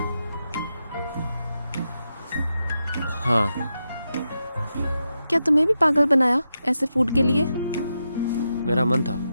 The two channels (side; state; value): both; inverted; correlation -0.87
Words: हाँ, क्या तुम्हें भी पागल बनाया ऐसे फूड के लिए? मेरा मन था।